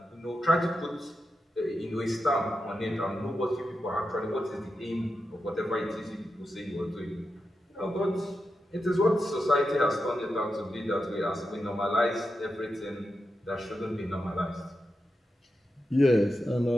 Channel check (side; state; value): both; normal; correlation 0.88